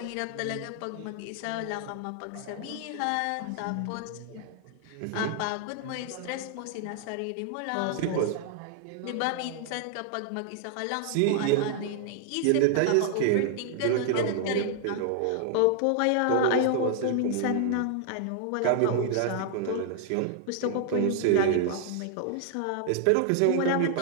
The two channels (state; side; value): different; both; correlation 0.00